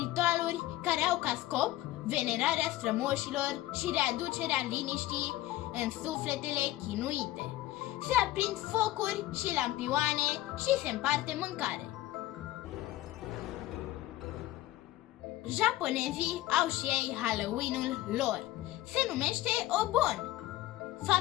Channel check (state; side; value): quieter; right; 16.3 dB